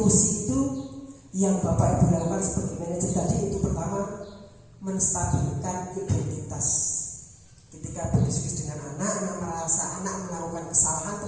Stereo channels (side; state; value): both; identical; correlation 1.00